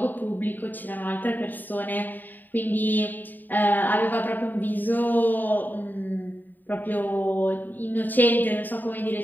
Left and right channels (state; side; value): late; right; 0.089 ms